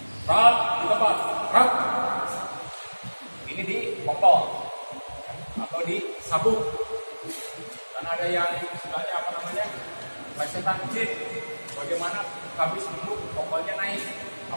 Rat di tempat, rat. Ini di kokol atau di sabuk. Karena ada yang istilahnya apa namanya? Plesetan jin. Bagaimana habis duduk kokolnya naik?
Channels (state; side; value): inverted; both; correlation -1.00